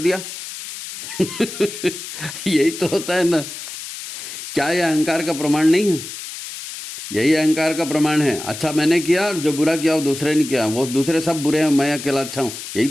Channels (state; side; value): noise; left; hiss, 10 dB below the sound